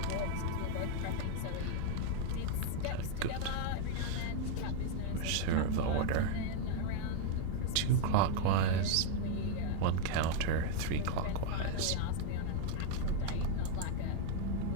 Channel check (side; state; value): both; different; correlation 0.00